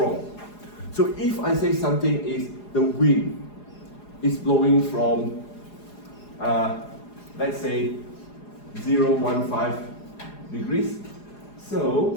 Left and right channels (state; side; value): late; right; 4.8 ms